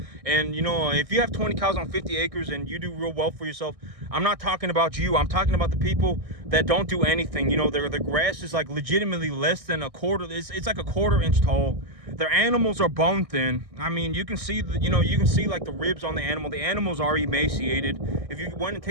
And, if you have 20 cows on 50 acres and you do real well for yourself, I'm not talking about you. I'm talking about the people that don't do anything. The grass is like legitimately less than a quarter. It's like a quarter-inch tall. Their animals are bone thin. I mean, you can see like the ribs on the animal. The animals are emaciated. If you went and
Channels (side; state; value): left; late; 1.6 ms